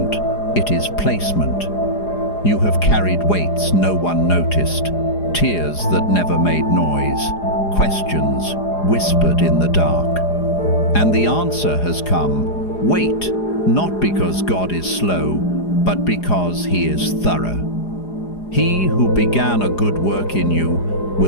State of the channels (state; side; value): late; right; 4.9 ms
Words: it is placement. You have carried weights no one noticed, tears that never made noise, questions whispered in the dark. And the answer has come. Wait, not because God is slow, but because He is thorough. He who began a good work in you